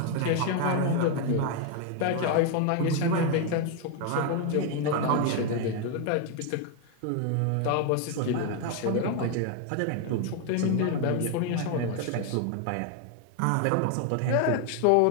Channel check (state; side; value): different; both; correlation 0.01